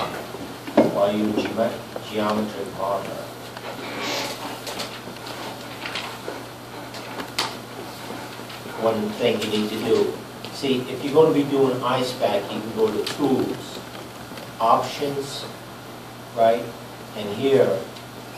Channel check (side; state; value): both; identical; correlation 1.00